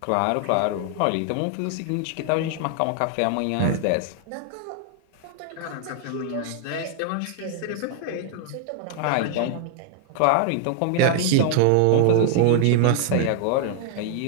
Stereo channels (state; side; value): different; both; correlation 0.00